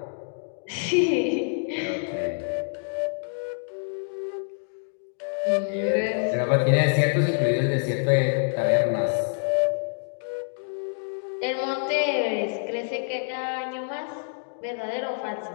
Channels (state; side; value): silent; right; 60 dB below the other